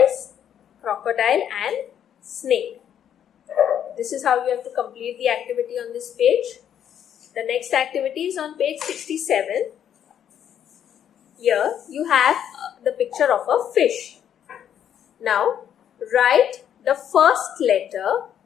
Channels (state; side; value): quieter; right; 9.5 dB